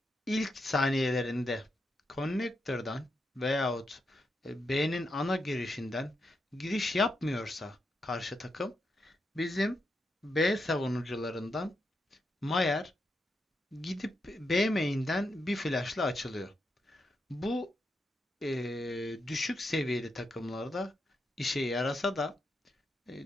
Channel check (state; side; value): normal; both; correlation 0.84